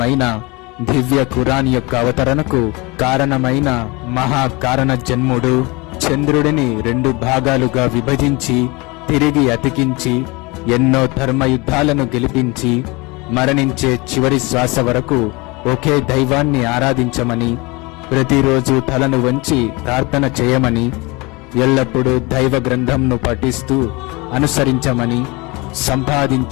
దివ్య ఖురాన్ యొక్క అవతరణకు కారణమైన మహాకారణ జన్ముడు, చంద్రుడిని 2 భాగాలుగా విభజించి తిరిగి అతికించి ఎన్నో ధర్మయుద్ధాలను గెలిపించి మరణించే చివరి శ్వాస వరకు ఒకే దైవాన్ని ఆరాధించమని, ప్రతిరోజు తలను వంచి ప్రార్థన చేయమని, ఎల్లప్పుడూ దైవ గ్రంథంను పఠిస్తూ అనుసరించమని,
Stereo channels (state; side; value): quieter; right; 25.6 dB